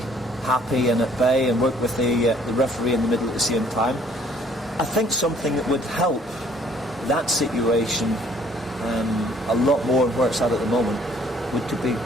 happy and at bay and work with the referee in the middle at the same time. I think something that would help that situation a lot more where it's at the moment would to be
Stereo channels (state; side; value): normal; both; correlation 0.60